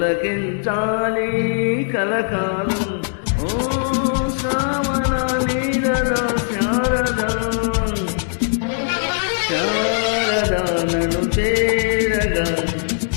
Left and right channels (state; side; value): silent; right; digital silence